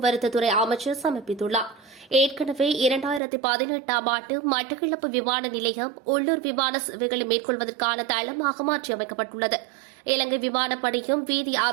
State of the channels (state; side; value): drops out; left; at 3.2 s